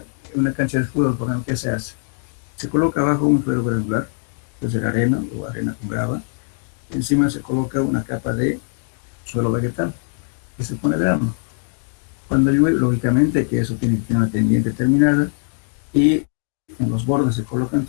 en una cancha de fútbol, por ejemplo, ¿qué se hace? Se coloca abajo un suelo granular, puede ser arena o arena con grava, encima se coloca una capa de suelo vegetal, que se pone grano. Cuando llueve, lógicamente que eso tiene que tener una pendiente terminada, y en los bordes se colocan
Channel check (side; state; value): right; silent; 65 dB below the other